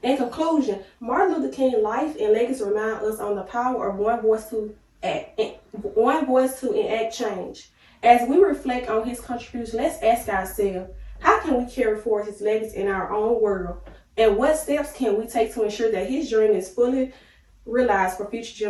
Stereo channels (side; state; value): both; identical; correlation 1.00